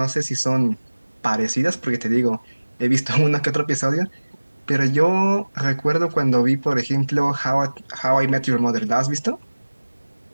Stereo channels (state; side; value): inverted; both; correlation -1.00